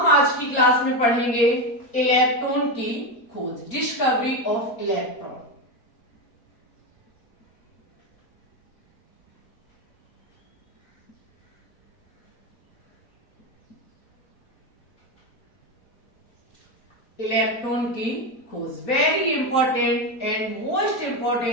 आज की क्लास में पढ़ेंगे इलेक्ट्रॉन की खोज, डिस्कवरी ऑफ इलेक्ट्रॉन। इलेक्ट्रॉन की खोज very important and most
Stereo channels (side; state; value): right; late; 4.4 ms